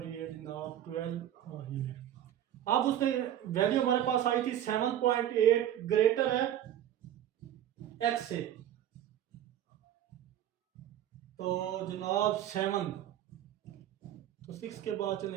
ये जनाब 12 और ये। अब उसने वैल्यू हमारे पास आई थी 7.8 ग्रेटर है x से, तो जनाब 7, तो 6 के बाद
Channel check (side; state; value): left; quieter; 11.6 dB